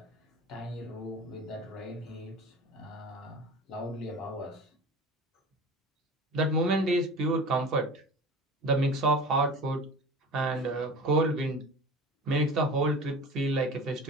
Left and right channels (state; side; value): normal; both; correlation 0.37